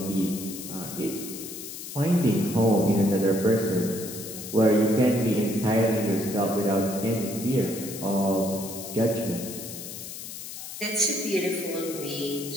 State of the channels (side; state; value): left; noise; hiss, 10 dB below the sound